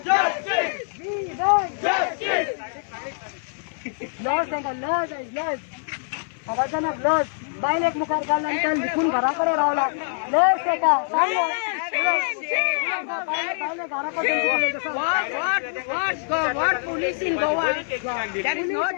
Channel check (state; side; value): silent; right; 57 dB below the other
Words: justice. We want justice. Loss आहे का loss आहे loss आवाजानं loss बाईल एक मुखार घालल्यानंतर लिखून घराकडे रावला loss आहे का What police in Goa? There is no